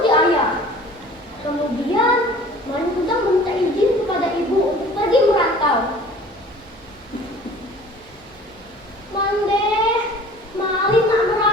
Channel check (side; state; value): right; noise; hum, 30 dB below the sound